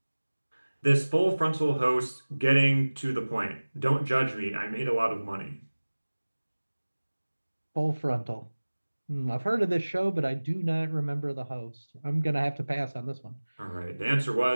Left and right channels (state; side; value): inverted; both; correlation -1.00